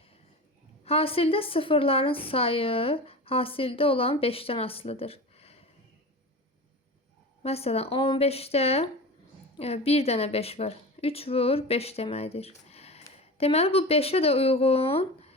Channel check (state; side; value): normal; both; correlation 0.30